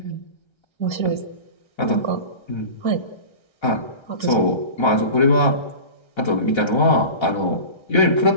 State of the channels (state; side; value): late; right; 1.3 ms